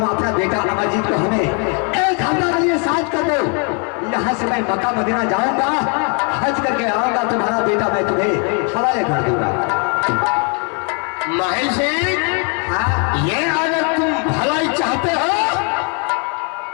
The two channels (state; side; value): quieter; right; 37.2 dB